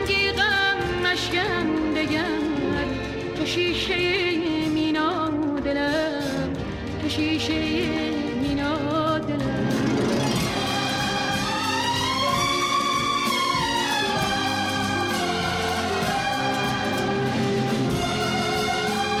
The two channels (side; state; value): both; identical; correlation 1.00